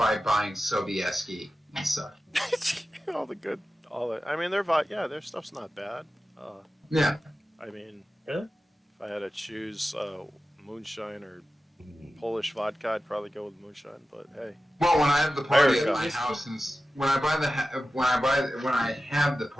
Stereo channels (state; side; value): normal; both; correlation 0.94